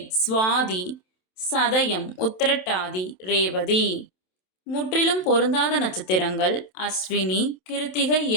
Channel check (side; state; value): right; late; 27 ms